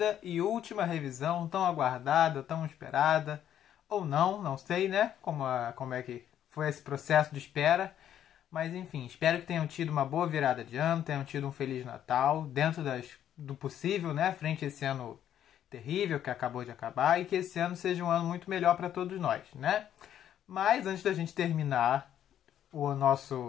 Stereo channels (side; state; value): right; quieter; 10.5 dB